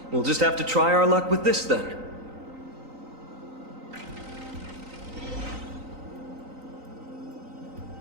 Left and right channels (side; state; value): left; late; 3.9 ms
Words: We'll just have to try our luck with this then.